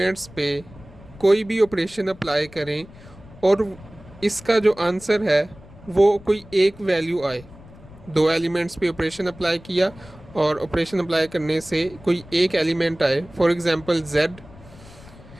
पे कोई भी ऑपरेशन अप्लाई करें और इसका जो आंसर है वो कोई एक वैल्यू आए, दो एलिमेंट्स पे ऑपरेशन अप्लाई किया और ऑपरेशन अप्लाई करने से कोई एक एलिमेंट आए, फॉर एग्ज़ाम्पल जेड।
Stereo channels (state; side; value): noise; left; rumble, 21 dB below the sound